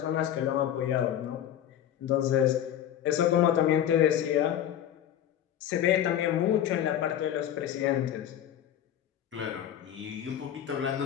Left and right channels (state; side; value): quieter; right; 10.6 dB